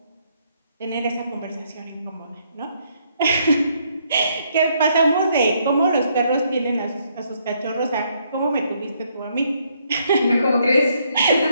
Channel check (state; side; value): inverted; both; correlation -0.71